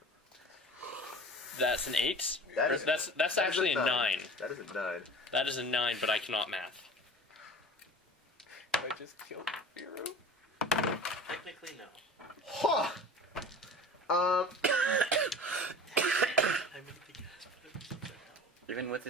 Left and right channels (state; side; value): normal; both; correlation 0.39